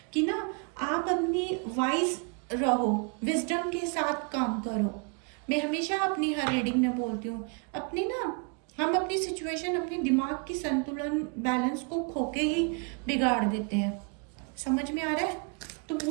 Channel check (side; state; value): left; quieter; 34.4 dB